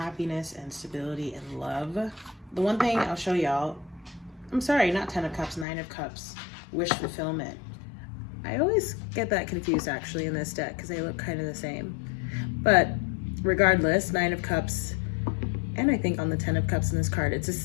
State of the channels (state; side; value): drops out; right; at 5.7 s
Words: and stability and love. The one thing I'll show y'all, I'm sorry, not 10 of Cups, 9 of Cups, wish fulfillment. I always get that confused actually in this deck because they look kind of the same. But regardless, 9 of Cups, and I think on the 10 of Cups in this card, it's